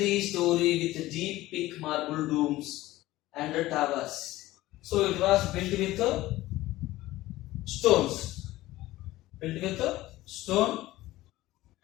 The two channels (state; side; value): quieter; right; 17.0 dB